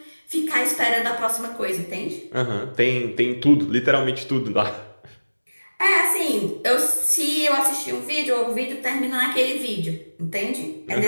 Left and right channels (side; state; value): both; inverted; correlation -1.00